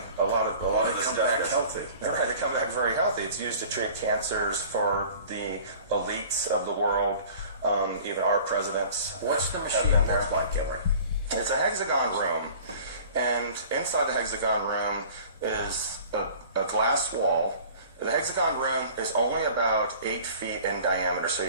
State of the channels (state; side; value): inverted; both; correlation -0.45